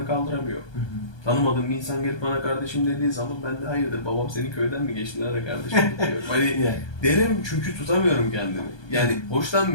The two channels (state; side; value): late; right; 1.2 ms